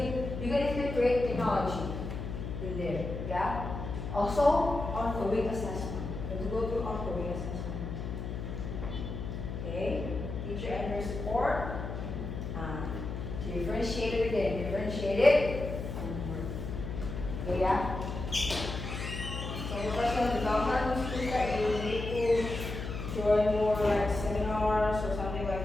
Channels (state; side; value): noise; left; hum, 6 dB below the sound